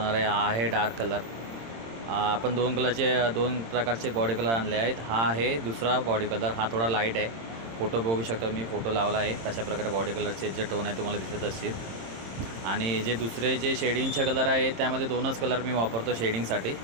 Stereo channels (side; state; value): left; late; 26 ms